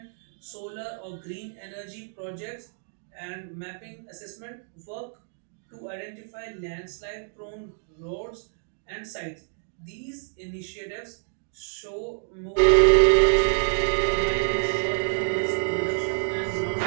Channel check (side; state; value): left; silent; digital silence